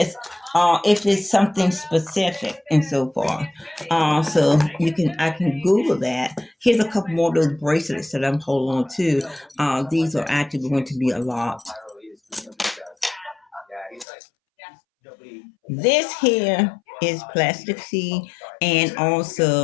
if it's something specific and so forth. So I can Google that. Here's a couple more of those bracelets that I'm holding on to. These are actually going to be a lot. This here is plastic C, and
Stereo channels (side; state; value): right; drops out; at 14.1 s